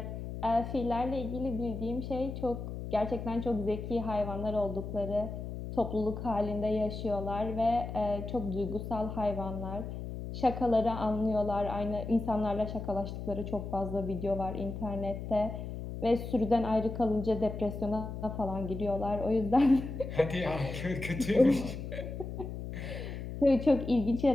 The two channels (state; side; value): noise; left; hum, 7 dB below the sound